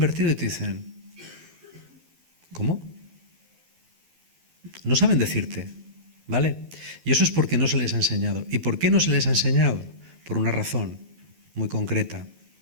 y te dicen, ¿cómo? No saben decirte, ¿vale? Y eso es porque no se les ha enseñado. ¿Y por qué no se les ha enseñado? Por una razón muy concreta.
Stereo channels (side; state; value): left; late; 12 ms